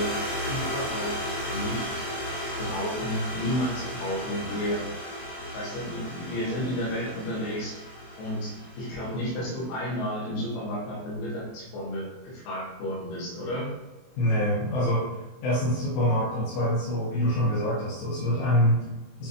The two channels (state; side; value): late; right; 23 ms